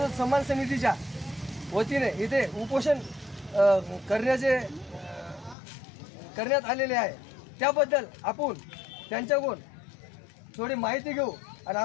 समाज समितीच्या वतीने इथे उपोषण करण्यात आलेले आहे। त्याबद्दल आपण त्यांच्याकडून थोडी माहिती घेऊ आणि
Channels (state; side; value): drops out; right; at 5.6 s